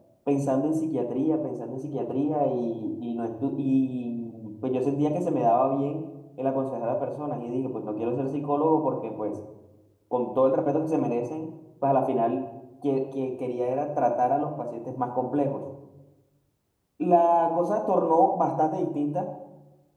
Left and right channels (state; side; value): identical; both; correlation 1.00